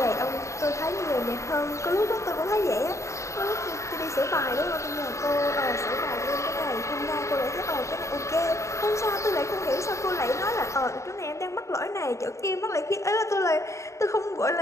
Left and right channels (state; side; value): late; right; 0.14 ms